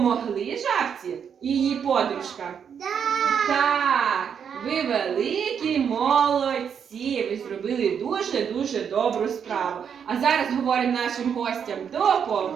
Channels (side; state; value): left; quieter; 7.5 dB